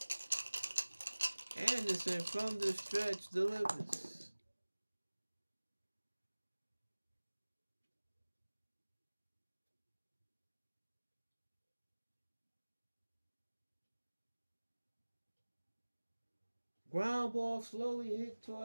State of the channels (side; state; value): both; inverted; correlation -1.00